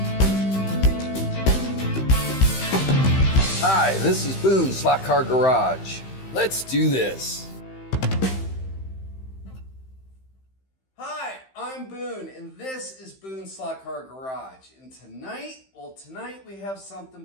this is Boone Slot Car Garage. Let's do this. Hi, I'm Boone, and this is Boone Slot Car Garage. And tonight we have something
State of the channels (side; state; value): right; late; 15 ms